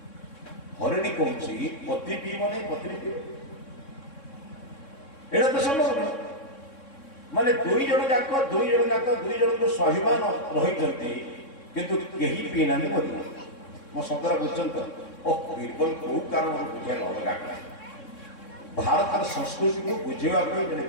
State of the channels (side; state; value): right; late; 3.6 ms